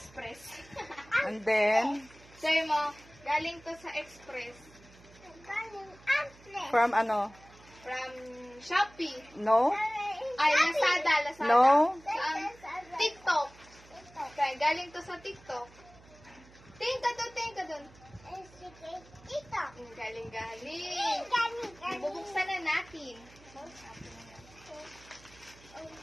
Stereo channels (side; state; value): right; noise; hum, 24 dB below the sound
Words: And then, Sabi mo, galing to sa Express. from ano? From Shopee. No? Ay, Lazada. No? Saan? TikTok. Okay, galing to sa TikTok. Tingin ka dun. Galing. Bubuksan na natin.